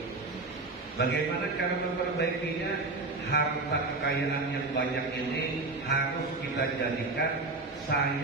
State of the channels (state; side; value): quieter; left; 3.4 dB